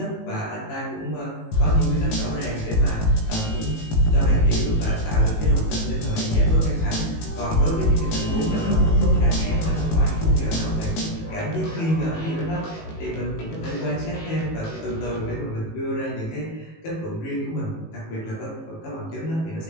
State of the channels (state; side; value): late; right; 19 ms